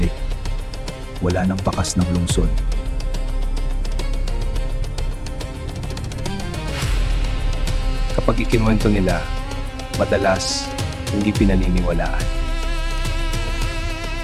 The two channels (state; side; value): identical; both; correlation 1.00